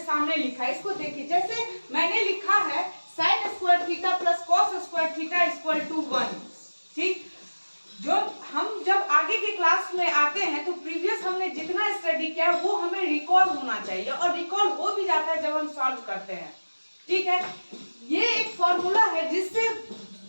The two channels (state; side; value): inverted; both; correlation -1.00